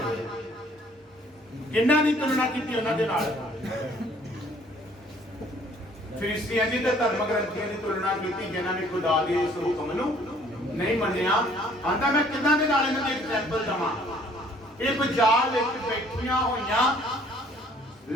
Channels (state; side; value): normal; both; correlation 0.58